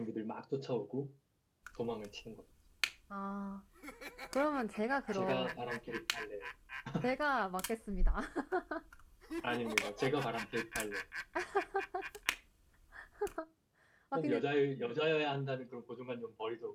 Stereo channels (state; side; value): identical; both; correlation 1.00